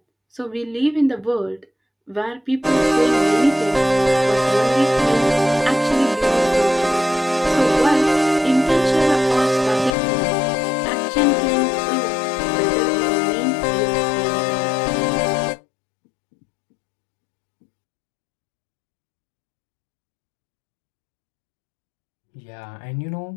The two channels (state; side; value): drops out; right; at 10.0 s